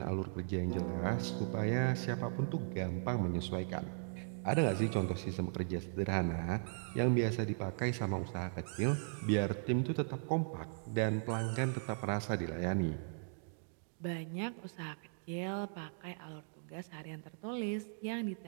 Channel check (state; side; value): silent; left; digital silence